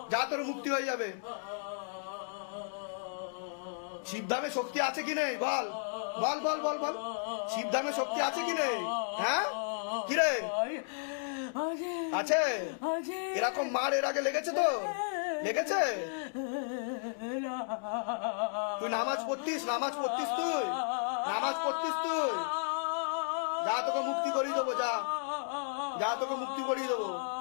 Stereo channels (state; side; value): silent; right; digital silence